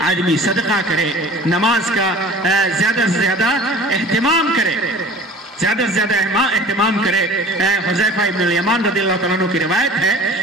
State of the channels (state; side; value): normal; both; correlation 0.43